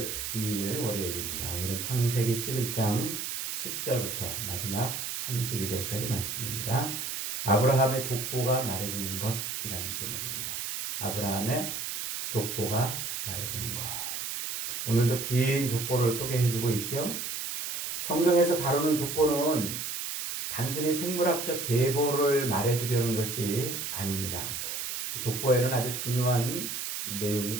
2일 월요일입니다. 오늘은 창세기 11장 10절부터 마지막 32절까지 말씀입니다. 아브라함의 족보가 말해주는 것이라는 제목입니다. 아브라함의 족보가 말해주는 것. 오늘도 긴 족보를 소개해주고 있죠. 성경에서 다루는 족보는 단순히 생물학적 계보를 말해주려는 것이 아닙니다. 족보에는 아주 중요한 내용이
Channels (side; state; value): right; noise; hiss, 4 dB below the sound